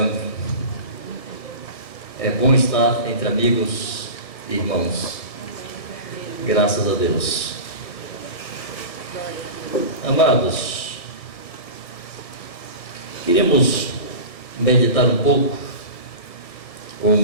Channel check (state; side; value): late; right; 1.6 ms